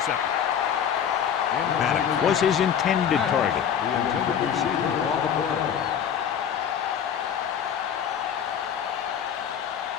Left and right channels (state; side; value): quieter; right; 8.5 dB